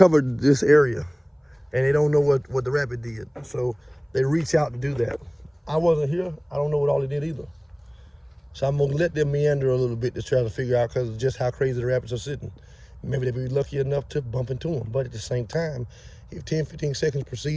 this area and they don't know what the rabbit did. So they reach out to do that. I wasn't here. I don't know what all they did either. So I'm gonna let them meander a little bit to try to figure out because of just how crazy the rabbits are sitting. Maybe they'll be lucky enough to bump into them. But at the same time, if 10, 15 seconds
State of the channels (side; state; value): both; identical; correlation 1.00